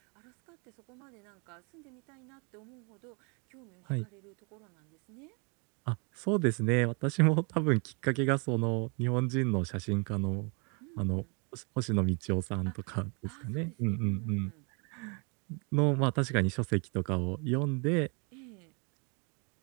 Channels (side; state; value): left; quieter; 34.3 dB